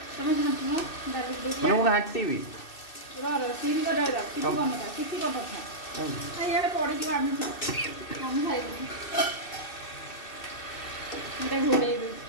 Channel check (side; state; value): right; late; 2.6 ms